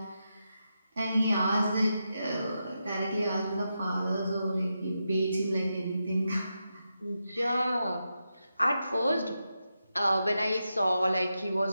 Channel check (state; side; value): inverted; both; correlation -0.87